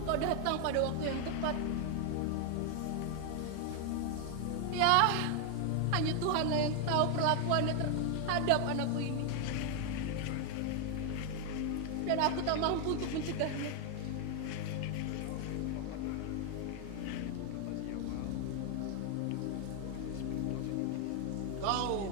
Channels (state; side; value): different; both; correlation 0.01